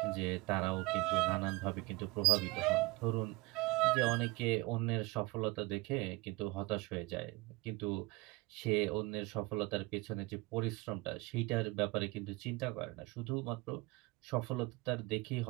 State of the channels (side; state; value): left; quieter; 21.9 dB